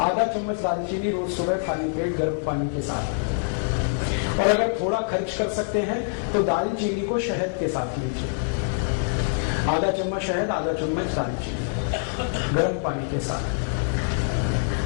आधा चम्मच दालचीनी रोज सुबह खाली पेट गर्म पानी के साथ। और अगर थोड़ा खर्च कर सकते हैं तो दालचीनी को शहद के साथ लीजिए। आधा चम्मच शहद, आधा चम्मच दालचीनी गर्म पानी के साथ।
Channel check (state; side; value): silent; right; 62 dB below the other